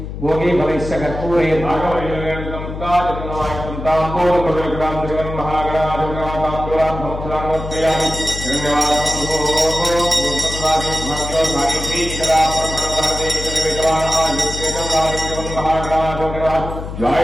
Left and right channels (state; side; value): noise; left; hum, 8 dB below the sound